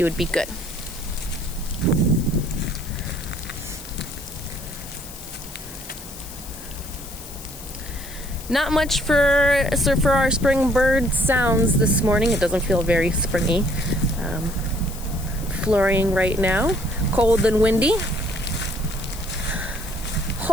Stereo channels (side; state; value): left; noise; hiss, 15 dB below the sound